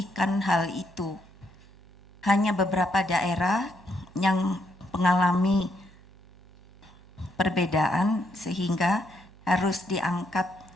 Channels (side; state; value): right; noise; hum, 22 dB below the sound